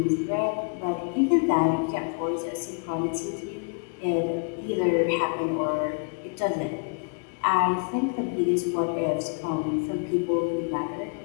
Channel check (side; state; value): right; quieter; 37.6 dB